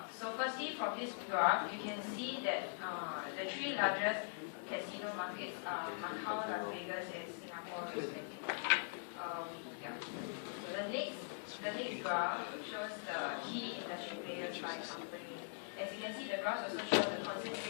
So firstly, from this graph, you can see that the three largest casino markets are Macau, Las Vegas, and Singapore respectively. The next the next graph shows the key industry players by company. As you can see, the graphs also show the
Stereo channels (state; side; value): silent; right; digital silence